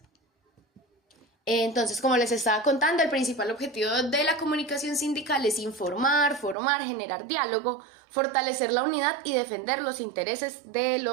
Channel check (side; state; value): left; drops out; at 6.6 s